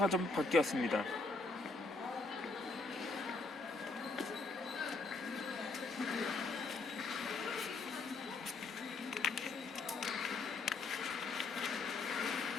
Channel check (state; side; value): quieter; right; 3.7 dB